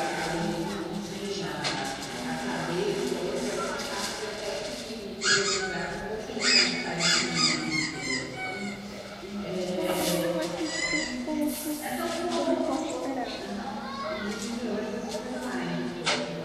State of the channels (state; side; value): identical; both; correlation 1.00